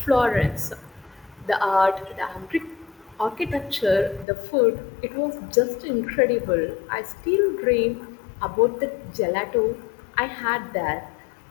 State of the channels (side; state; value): right; drops out; at 4.2 s